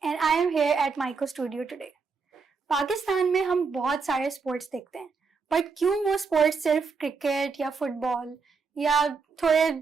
and I am here at Maiko Studio today. Pakistan में हम बहुत सारे स्पोर्ट्स देखते हैं, बट क्यों वो स्पोर्ट्स सिर्फ क्रिकेट या फुटबॉल या थोड़े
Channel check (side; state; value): left; quieter; 5.0 dB